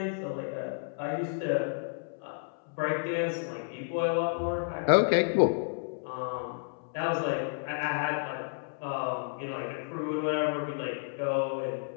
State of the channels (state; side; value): silent; right; 57 dB below the other